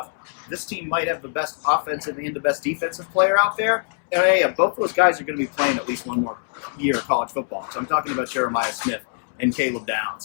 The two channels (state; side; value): silent; right; 63 dB below the other